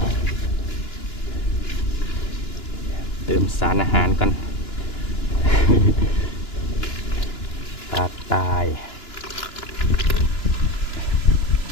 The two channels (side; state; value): right; late; 2.9 ms